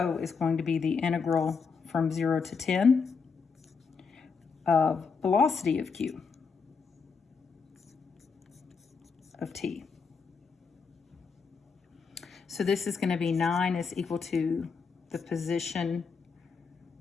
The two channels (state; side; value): quieter; right; 5.3 dB